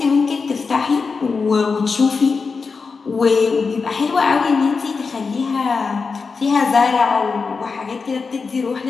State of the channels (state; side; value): quieter; right; 4.8 dB